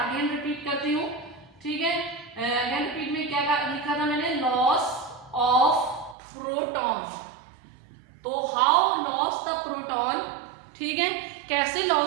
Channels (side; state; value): left; drops out; at 6.2 s